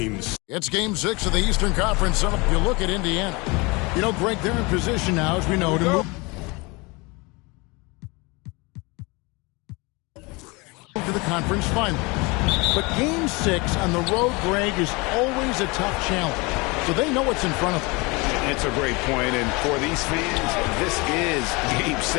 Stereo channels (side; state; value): right; quieter; 26.4 dB